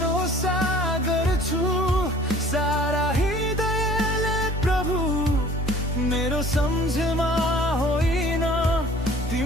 गर्छु सारा हृदयले प्रभु। मेरो सम्झमा होइन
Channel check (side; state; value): both; normal; correlation 0.51